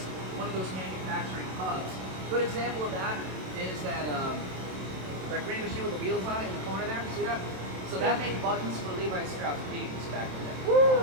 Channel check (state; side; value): late; left; 27 ms